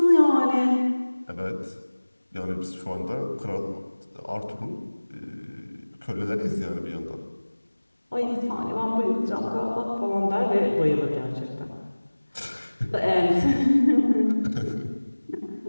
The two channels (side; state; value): both; inverted; correlation -1.00